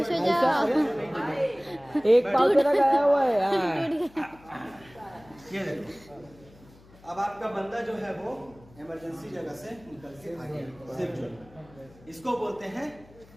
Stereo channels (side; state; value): left; noise; hum, 25 dB below the sound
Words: हो जाओ। एक पाँव तेरा गया हुआ है। ये देखो, अब आपका बंदा जो है वो इमरजेंसी जगह से निकल के आ गया सेफ जोन। इसको बोलते हैं,